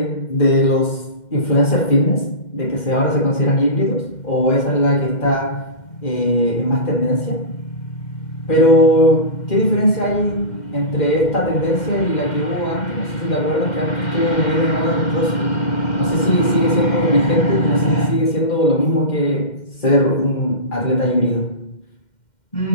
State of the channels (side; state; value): right; late; 2.1 ms